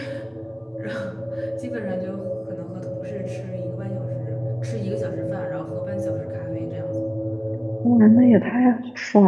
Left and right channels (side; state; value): both; identical; correlation 1.00